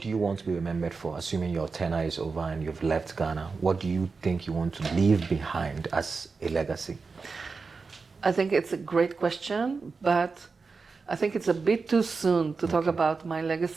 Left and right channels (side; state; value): left; quieter; 4.5 dB